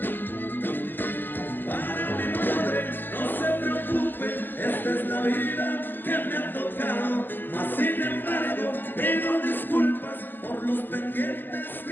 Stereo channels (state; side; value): late; right; 0.092 ms